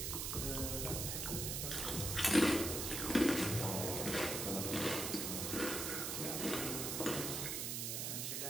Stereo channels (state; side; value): noise; right; hiss, 1 dB below the sound